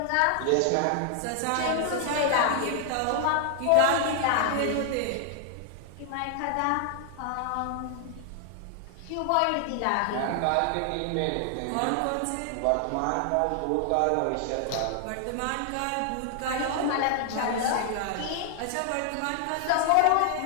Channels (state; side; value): different; both; correlation 0.00